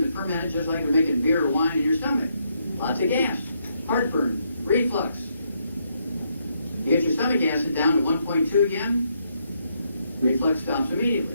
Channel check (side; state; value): both; inverted; correlation -0.76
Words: to ferment just like they're making beer or wine in your stomach. Lots of gas, heartburn, reflux. You get your stomach acid down to 1.2 again, reflux stops